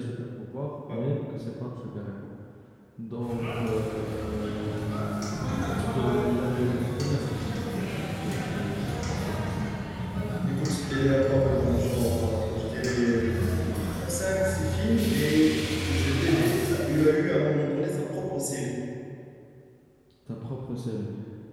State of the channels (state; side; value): identical; both; correlation 1.00